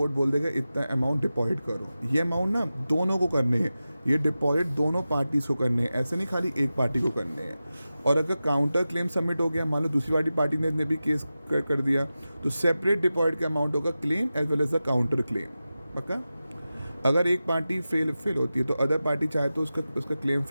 बोल देगा इतना अमाउंट डिपॉजिट करो। ये अमाउंट ना दोनों को करने हैं, ये डिपॉजिट दोनों पार्टीज को करने हैं, ऐसे नहीं खाली एक पार्टी को करने हैं। और अगर काउंटर क्लेम सबमिट हो गया, मान लो दूसरी वाली पार्टी ने भी केस कर दिया, तो सेपरेट डिपॉजिट का अमाउंट होगा claim as well as the counter claim. पक्का? अगर एक पार्टी फेल होती है तो अदर पार्टी चाहे तो उसका क्लेम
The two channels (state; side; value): inverted; both; correlation -0.94